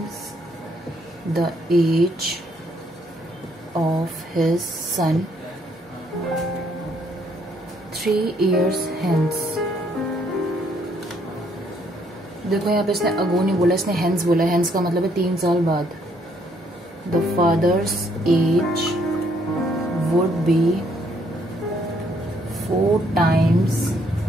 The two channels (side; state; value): both; normal; correlation 0.69